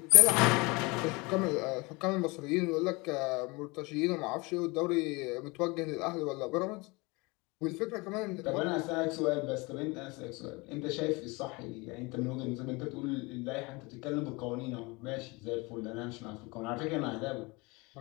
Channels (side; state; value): right; quieter; 25.7 dB